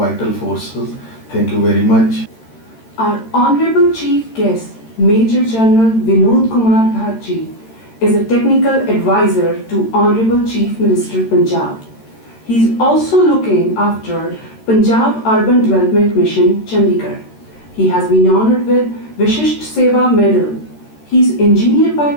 forces. Thank you very much. Our Honorable Chief Guest, Major General Vinod Kumar Bharji, is a technical advisor to Honorable Chief Minister Punjab. He is also looking after Punjab Urban Development Mission, Chandigarh. He has been honored with Vishisht Seva Medal. He is engineer by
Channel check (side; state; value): right; late; 13 ms